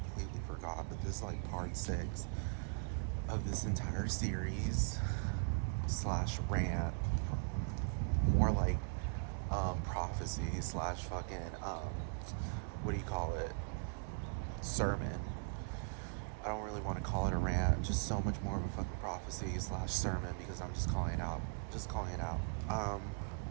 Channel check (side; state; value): left; quieter; 35.4 dB